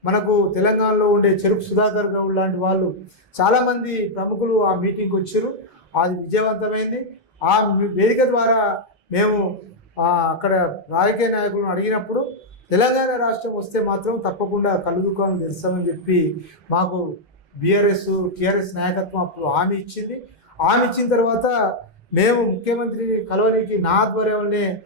మనకు తెలంగాణలో ఉండే చెరుకు సుధాకర్ గౌడ్ లాంటి వాళ్ళు చాలామంది ప్రముఖులు ఆ మీటింగ్కి వచ్చారు. అది విజయవంతమైంది. ఆ వేదిక ద్వారా మేము అక్కడ రాజకీయ నాయకులను అడిగినప్పుడు తెలంగాణ రాష్ట్రం వస్తే మాత్రం తప్పకుండా కళ్ళు దుకాణాలు తెరుస్తామని చెప్పి మాకు బీఆర్ఎస్ టీఆర్ఎస్ నాయకత్వం అప్పుడు హామీ ఇచ్చింది. హామీ ఇచ్చిన తర్వాత మేము ముఖ్యమంత్రిని కలవడానికి నా ఆధ్వర్యంలోనే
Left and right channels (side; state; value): both; normal; correlation -0.04